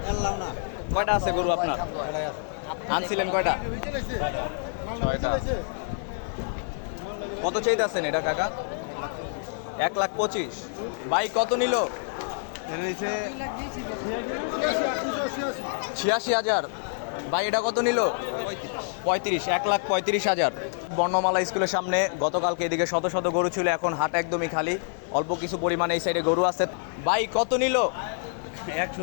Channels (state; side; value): silent; right; 60 dB below the other